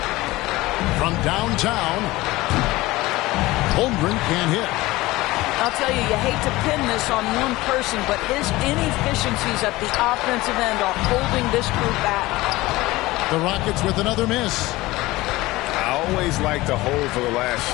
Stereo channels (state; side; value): quieter; right; 19.3 dB